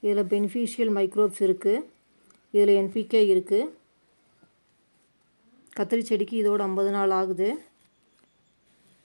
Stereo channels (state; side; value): inverted; both; correlation -1.00